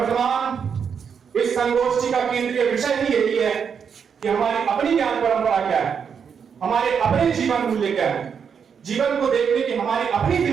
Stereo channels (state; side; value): quieter; left; 6.9 dB